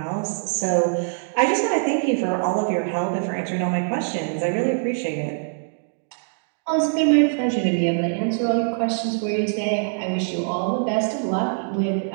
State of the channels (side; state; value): left; silent; digital silence